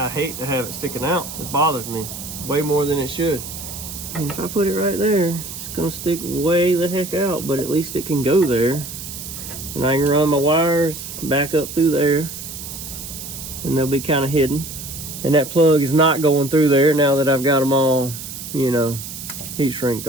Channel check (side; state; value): right; noise; hiss, 10 dB below the sound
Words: hate to have it sticking out. It bothers me way more than it should. And if I put it right there, it's gonna stick way the heck out, but at least it can go there. And I can run my wires back up through there, and they'll be kind of hidden. And that plug is not going through there now that I've got them all, you know, heat shrinked